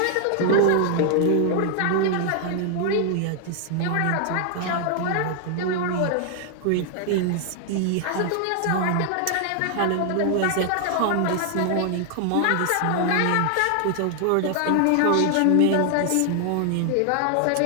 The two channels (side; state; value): both; different; correlation 0.00